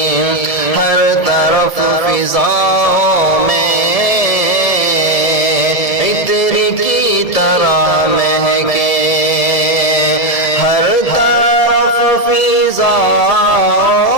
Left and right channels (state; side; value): late; right; 1.8 ms